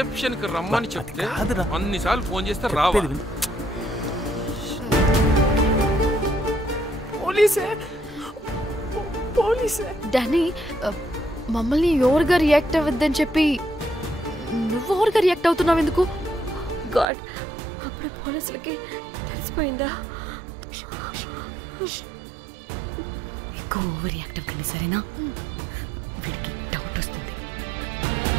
కి రమ్మని చెప్తే అన్నిసార్లు ఫోన్ చేస్తే రావా? పోలీసే. డానీ, మమ్మల్ని ఓవర్గా రియాక్ట్ అవ్వద్దని చెప్పి నువ్వు ఓవర్గా రియాక్ట్ అవుతున్నావు ఎందుకు? గాడ్, అప్పుడు పోలీసులకి తెలిసిపోయిందా? ఎక్కువ ఓవర్ రియాక్ట్ అవ్వకండి, సరేనా? వీడికి డౌట్ వస్తుంది.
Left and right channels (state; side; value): drops out; left; at 17.1 s